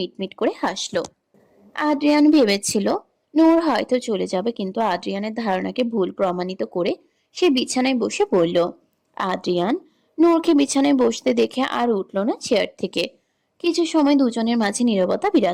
করে হাসলো। আদ্রিয়ান ভেবেছিল নূর হয়তো চলে যাবে, কিন্তু আদ্রিয়ানের ধারণাকে ভুল প্রমাণিত করে সে বিছানায় বসে পড়ল। আদ্রিয়ান নূরকে বিছানায় বসতে দেখে আর উঠল না চেয়ার থেকে। কিছু সময় দুজনের মাঝে নীরবতা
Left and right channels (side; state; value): both; identical; correlation 1.00